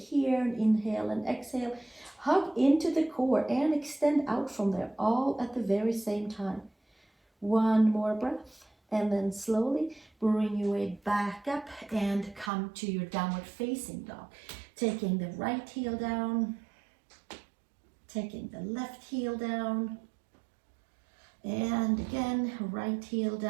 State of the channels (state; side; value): drops out; left; at 12.5 s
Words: and inhale and exhale. Hug into the core and extend out from there, all at the very same time. One more breath, and then slowly bring your weight back up and come to your downward facing dog. Taking the right heel down, taking the left heel down, and again, right heel